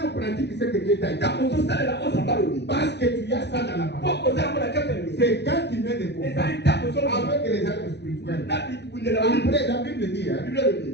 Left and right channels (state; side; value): late; right; 0.50 ms